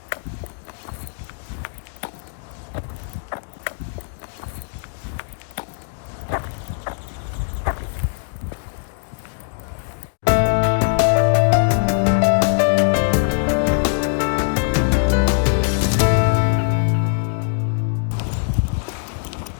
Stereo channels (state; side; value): silent; right; digital silence